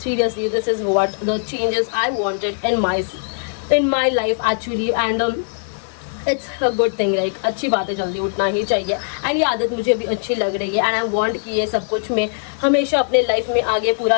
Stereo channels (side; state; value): right; silent; digital silence